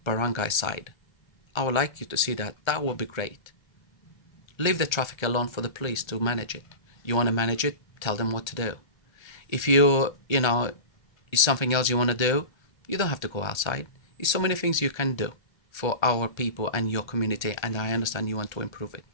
barangay side? I would like you to see that. That would be great. Leave the traffic alone for the police to manage it. You want to manage it? Tell them what to do. If it's something else you want to do, you don't have to go outside. There's so many things you can do for our people and your community, and I understand you want to improve it.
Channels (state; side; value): late; right; 1.3 ms